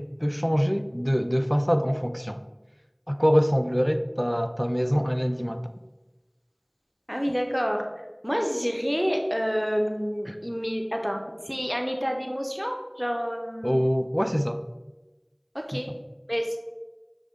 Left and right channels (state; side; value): identical; both; correlation 1.00